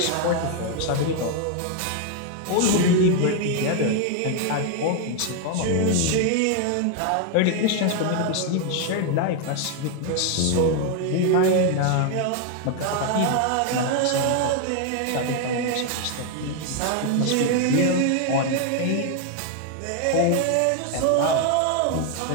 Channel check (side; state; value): both; different; correlation 0.00